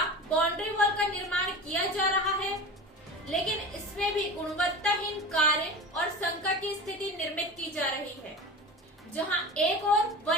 बाउंड्री वॉल का निर्माण किया जा रहा है, लेकिन इसमें भी गुणवत्ताहीन कार्य और संकट की स्थिति निर्मित की जा रही है। जहां एक ओर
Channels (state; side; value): normal; both; correlation 0.31